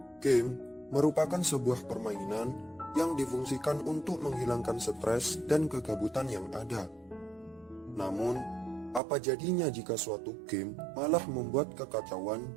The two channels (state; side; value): drops out; left; at 9.0 s